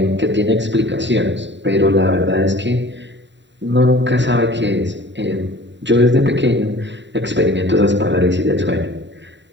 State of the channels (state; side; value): late; left; 0.52 ms